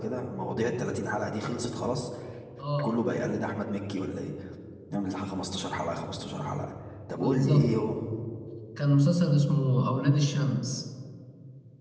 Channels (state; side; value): identical; both; correlation 1.00